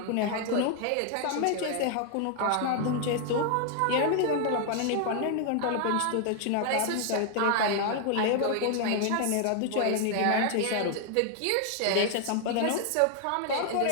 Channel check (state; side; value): different; both; correlation 0.00